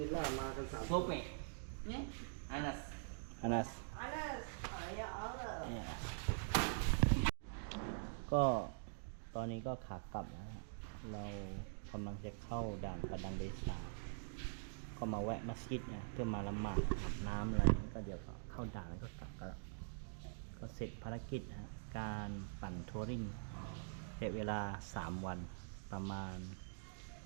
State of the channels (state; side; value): silent; left; digital silence